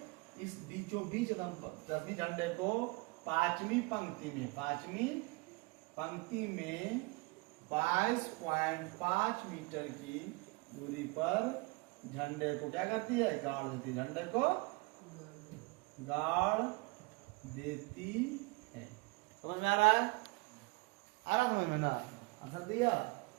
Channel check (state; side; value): quieter; left; 26.6 dB